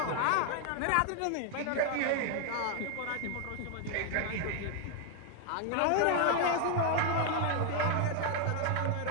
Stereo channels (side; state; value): both; different; correlation 0.00